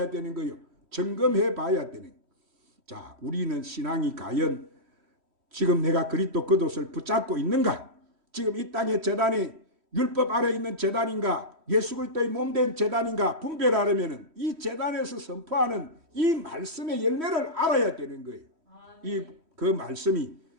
되는 거예요? 점검해 봐야 되는 거예요. 자, 우리는 신앙이 과연 지금 내가 그리스도 겉옷을 붙잡고 있는가? 지금 이 땅의 제단이 율법 아래 있는 제단인가? 예수 그리스도의 몸된 제단인가? 분별하려면 이 제단에서 선포하는 이 말씀의 열매를 알아야 되는 거예요. 그 말씀이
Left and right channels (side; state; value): left; late; 3.1 ms